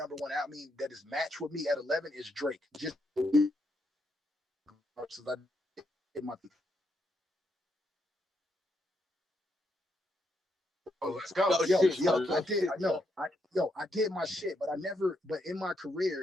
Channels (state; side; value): normal; both; correlation 0.79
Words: one album that is matched with me at 11 is Drake. Just I did my Let's go. I did my shit, but but in my